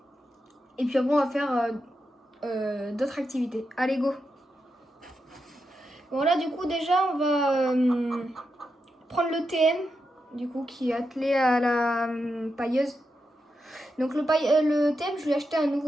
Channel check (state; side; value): normal; both; correlation 0.87